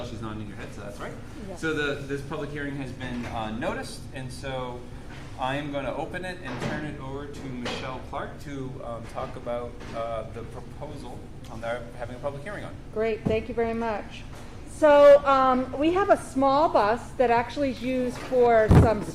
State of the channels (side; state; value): both; identical; correlation 1.00